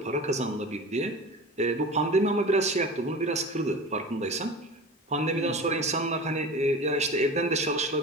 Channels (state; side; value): normal; both; correlation 0.33